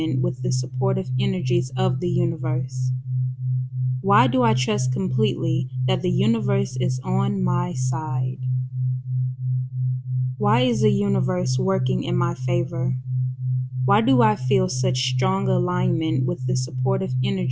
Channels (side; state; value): both; identical; correlation 1.00